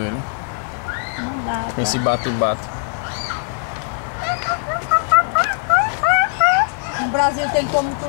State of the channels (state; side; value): silent; right; digital silence